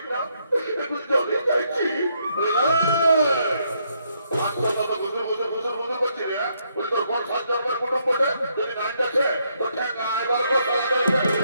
না একটু জলে চাইছি করছি রে বলে তোর কোন 7 কুটুম বটে যদি নাইন আছে তো ঠেকা এবার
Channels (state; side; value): inverted; both; correlation -0.75